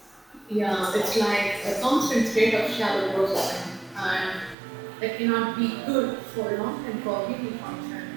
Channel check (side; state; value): left; drops out; at 4.5 s